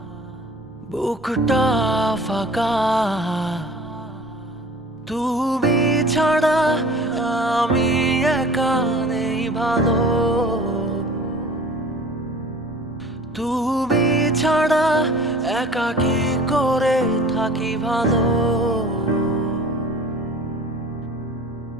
বুকটা ফাঁকা। তুমি ছাড়া আমি একা নেই ভালো, তুমি ছাড়া একা কি করে থাকি ভালো।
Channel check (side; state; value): both; normal; correlation 0.45